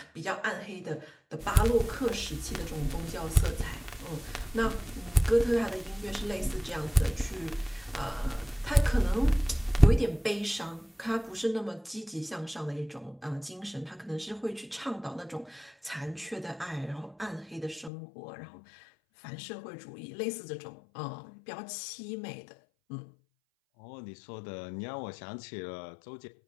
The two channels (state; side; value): drops out; right; at 17.9 s